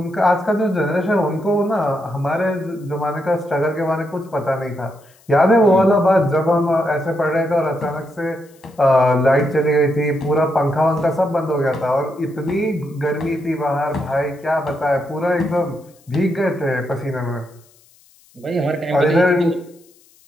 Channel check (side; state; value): left; noise; hiss, 30 dB below the sound